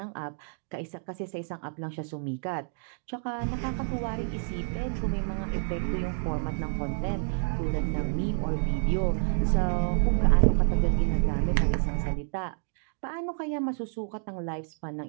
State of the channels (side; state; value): left; silent; digital silence